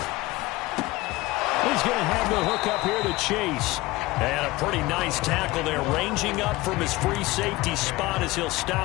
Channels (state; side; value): quieter; right; 20.0 dB